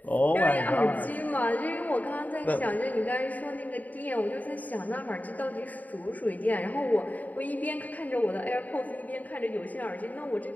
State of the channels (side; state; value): right; late; 0.076 ms